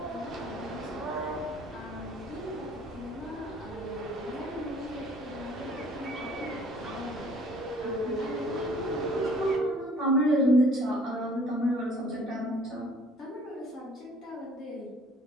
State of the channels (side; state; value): both; normal; correlation 0.55